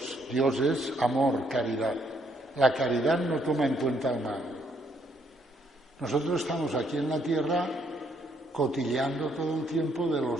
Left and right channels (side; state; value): both; normal; correlation 0.70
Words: Dios es amor, caridad. La caridad no toma en cuenta el mal. Nosotros estamos aquí en la tierra cotilleando todo el tiempo de